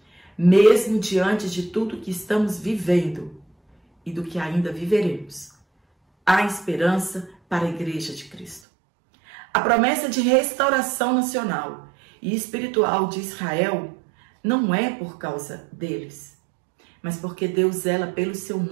Mesmo diante de tudo que estamos vivendo e do que ainda viveremos, há esperança para a Igreja de Cristo. A promessa de restauração nacional e espiritual de Israel não é por causa deles, mas porque Deus zela pelo seu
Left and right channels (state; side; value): drops out; left; at 8.6 s